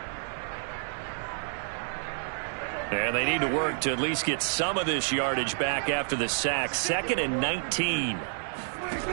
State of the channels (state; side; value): silent; left; digital silence